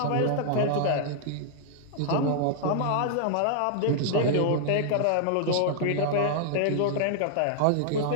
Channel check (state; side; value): different; both; correlation -0.01